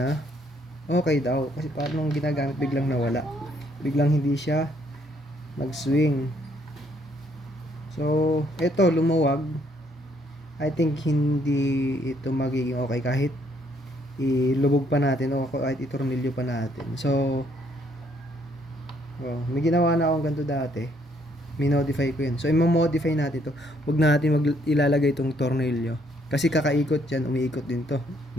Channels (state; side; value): normal; both; correlation 0.68